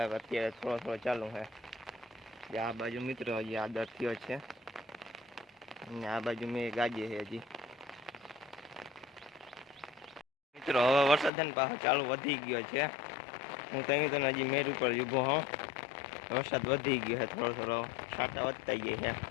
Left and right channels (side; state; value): right; drops out; at 11.3 s